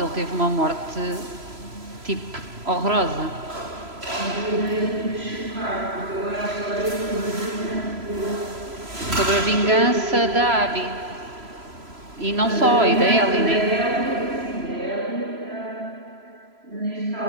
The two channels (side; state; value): left; late; 3.0 ms